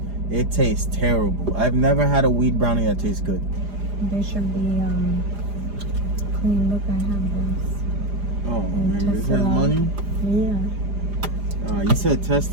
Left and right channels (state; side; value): late; left; 4.9 ms